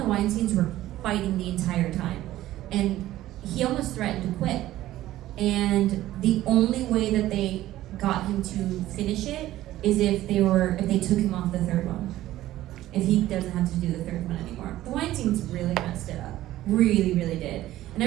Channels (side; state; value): left; quieter; 14.7 dB